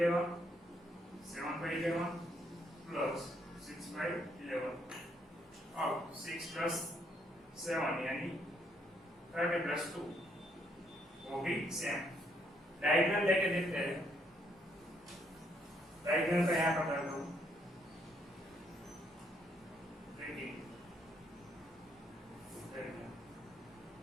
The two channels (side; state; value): both; normal; correlation 0.72